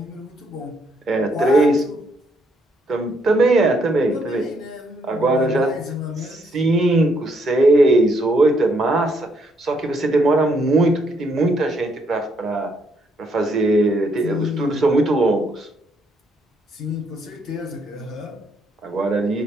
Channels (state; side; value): normal; both; correlation 0.73